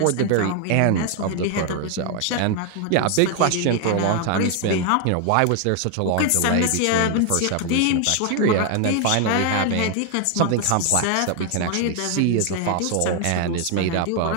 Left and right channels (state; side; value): different; both; correlation 0.00